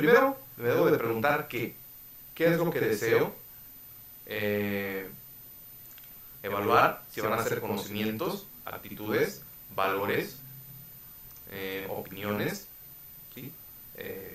me debo de preguntar qué es lo que deseo evaluar, si van a ser conocimientos, actitudes, valores, opiniones, ¿sí?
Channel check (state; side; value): identical; both; correlation 1.00